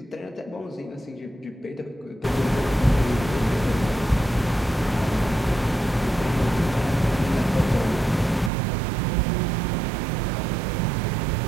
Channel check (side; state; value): left; drops out; at 8.5 s